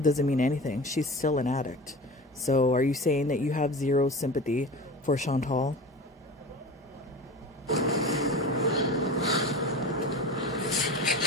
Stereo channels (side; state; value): both; normal; correlation 0.33